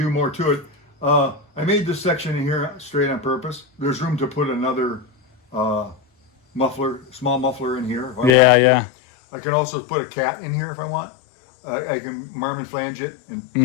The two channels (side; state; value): right; drops out; at 8.3 s